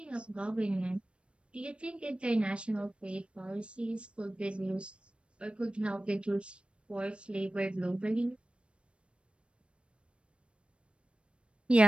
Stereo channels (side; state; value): left; late; 0.059 ms